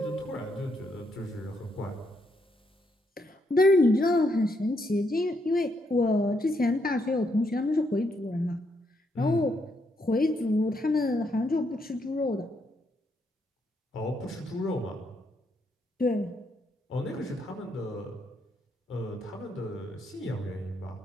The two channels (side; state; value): both; normal; correlation 0.77